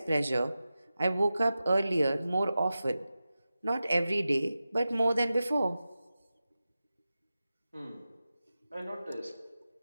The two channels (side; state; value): both; inverted; correlation -0.94